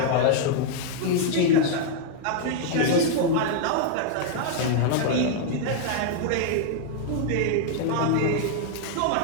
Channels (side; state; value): both; different; correlation -0.01